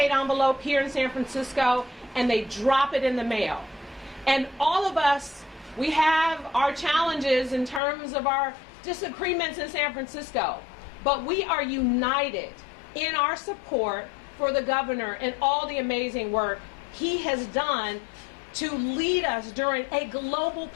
envelope here in San Francisco, and they drop it in the mail. And all of us, we have our challenges in terms of our disagreements in San Francisco, but we are united in our support for the governor and all the amazing work he has done to lead us during a global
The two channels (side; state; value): right; drops out; at 7.8 s